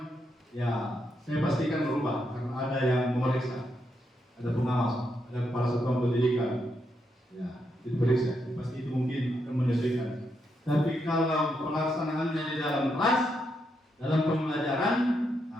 ya saya pastikan berubah karena ada yang memeriksa, ada pengawas, ada kepala satuan pendidikan, ya diperiksa, pasti itu mungkin akan menyesuaikan. Tapi kalau pelaksanaannya di dalam kelas, dalam pembelajaran,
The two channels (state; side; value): normal; both; correlation 0.80